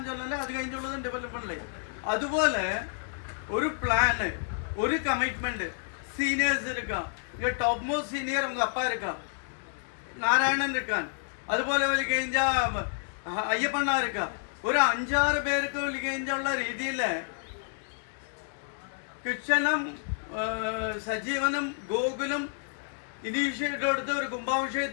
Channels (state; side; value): silent; right; digital silence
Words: ചൊല്ലല്ലേ, അത് കഴിഞ്ഞുള്ളത് ഡെവലപ്മെന്റിലെ. അതുപോലെ ഒരു പ്ലാന് ഒരു കമ്മിറ്റ്മെന്റ് സീനിയേഴ്സ് എടുക്കാം. ഇങ്ങ ടോപ്പ് മോസ്റ്റ് സീനിയർ ഉங்க அப்பா இருக்கா, നാരായണൻ இருக்கான், അതുപോലെ ഒരു കഴിഞ്ഞ അയ്യപ്പണ്ണ இருக்கா. ഒരു 5-6 പേർക്ക് ഒരു കഴിഞ്ഞുള്ള രീതിയിൽ കിച്ചനും സജീവനും ഗോകുലും ഇനീഷ്യേറ്റീവ് എടുത്ത് ഒരു